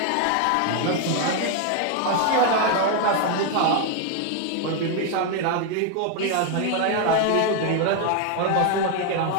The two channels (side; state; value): both; different; correlation 0.01